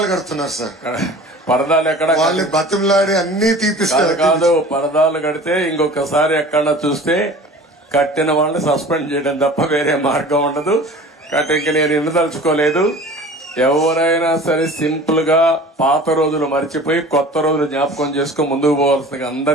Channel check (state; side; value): normal; both; correlation 0.42